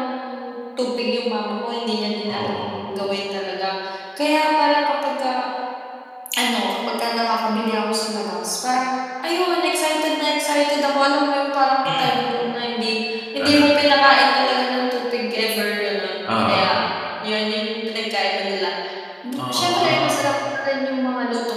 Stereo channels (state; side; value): identical; both; correlation 1.00